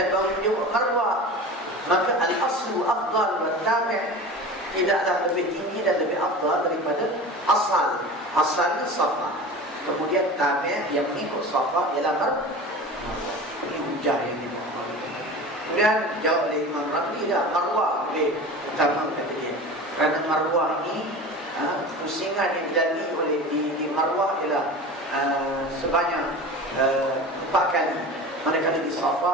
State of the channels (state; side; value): normal; both; correlation 0.34